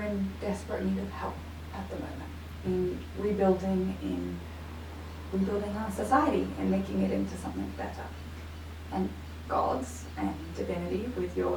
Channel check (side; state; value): both; identical; correlation 1.00